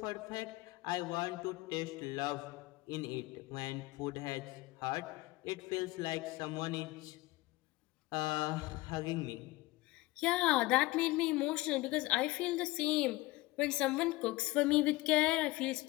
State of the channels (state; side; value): quieter; right; 20.5 dB